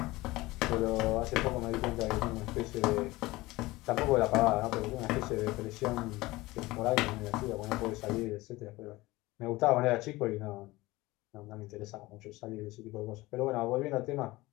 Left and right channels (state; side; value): quieter; right; 20.0 dB